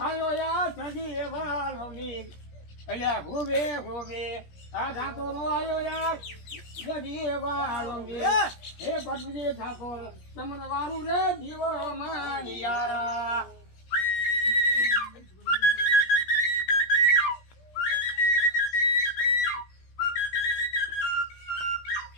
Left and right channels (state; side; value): late; right; 17 ms